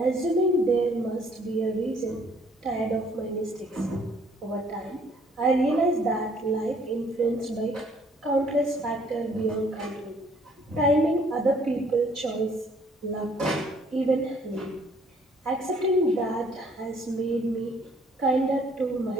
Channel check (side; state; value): both; normal; correlation 0.61